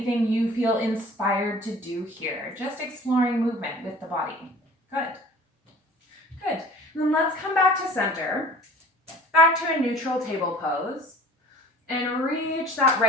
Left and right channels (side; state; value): both; normal; correlation 0.46